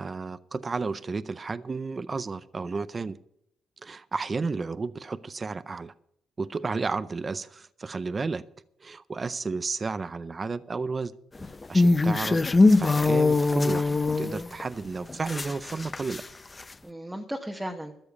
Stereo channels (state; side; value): normal; both; correlation 0.93